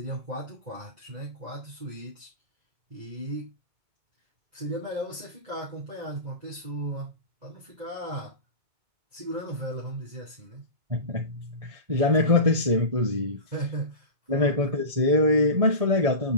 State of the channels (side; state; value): left; late; 2.2 ms